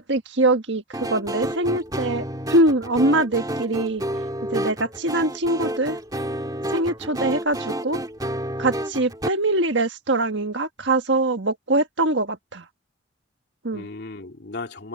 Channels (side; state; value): both; normal; correlation 0.09